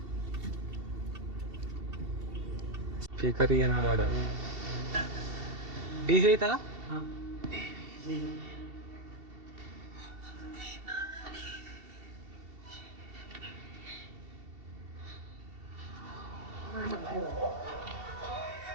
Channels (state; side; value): late; left; 2.7 ms